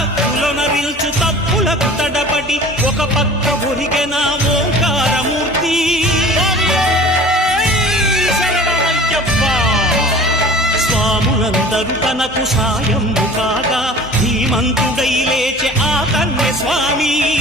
తప్పులకు తడబడి ఒక పక్క ఒరిగెన ఓంకారమూర్తి స్వాములందరూ తనకు సాయము కాగా ధీమంతుడై లేచే ఆ కన్య స్వామి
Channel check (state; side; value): normal; both; correlation 0.43